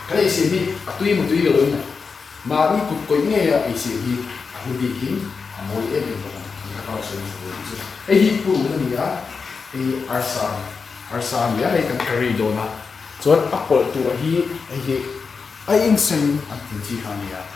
cái này xiêm đi tuy một tuy rồi này mà đi cục có nghe cái xiêm đi không bị hiếm mỗi em đều có những cái sự ấy hi phụ nữ này cái arsan này cái curry đồ na cho apple tu hi ai in sen anh tin chi hàng này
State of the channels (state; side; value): quieter; right; 5.1 dB